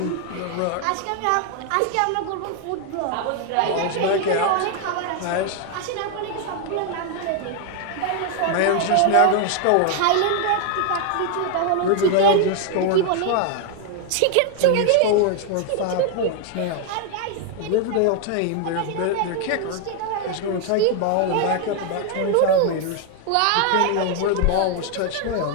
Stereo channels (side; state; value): both; different; correlation 0.00